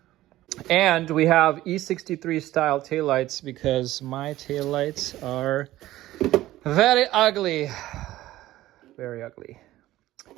And we have E63 style taillights, because my taillights are very ugly. Very ugly,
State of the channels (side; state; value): left; quieter; 15.6 dB